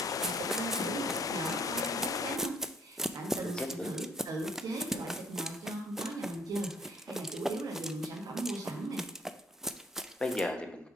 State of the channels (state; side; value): normal; both; correlation 0.61